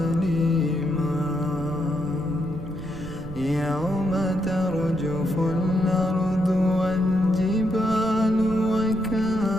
يوم ترجف الأرض والجبال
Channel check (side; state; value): right; noise; rumble, 12 dB below the sound